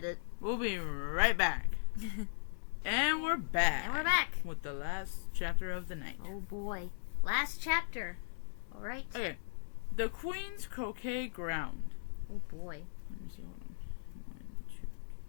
We'll be right back. And we're back. And we're back. With the last chapter of the night. Oh boy. Last chapter. Alright. Okay. The Queen's Croquet Ground. Oh boy. Let me see. Hold on. 1, 2, 3, 4,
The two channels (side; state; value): right; silent; digital silence